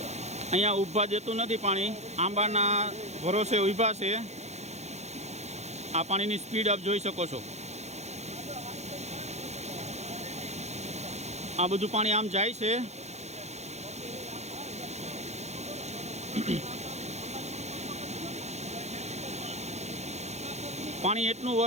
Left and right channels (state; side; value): late; left; 0.32 ms